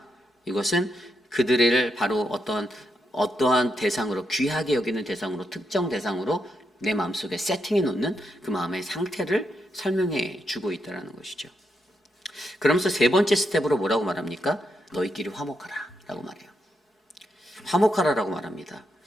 이것은 그들을 바로 어떠한 대상으로, 귀하게 여기는 대상으로, 특정 대상으로 내 마음속에 세팅해 놓는 그 마음의 상태를 설명해 주고 있다는 것이죠. 그러면서 세 번째 스텝으로 뭐라고 말합니까? 너희끼리 화목하라 라고 말해요. 화목하라라고 말합니다.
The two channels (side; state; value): both; normal; correlation 0.82